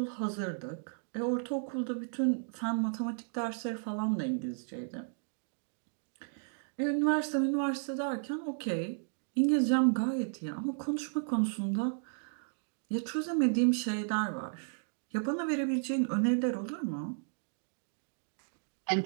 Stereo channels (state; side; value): silent; left; digital silence